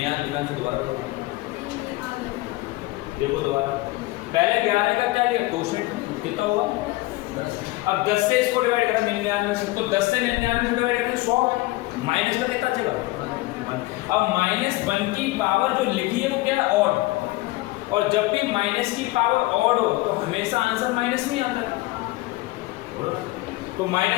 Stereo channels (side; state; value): right; quieter; 20.3 dB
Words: यार, ध्यान से दोबारा देखो दोबारा। पहले 11 का क्या लिया क्वेश्चन कितना हुआ? अब 10 से इसको डिवाइड करा 99 से, तो 10 से 99 से डिवाइड करें 100, माइनस का कितना चला? अब -1 की पावर जो लिखी है वो क्या है? ऑड। और जब भी माइनस की पावर ऑड हो तो हमेशा आंसर माइनस में आता है। तो